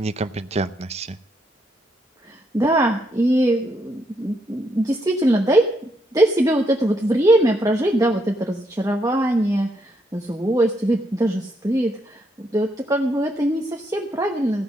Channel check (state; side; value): normal; both; correlation 0.76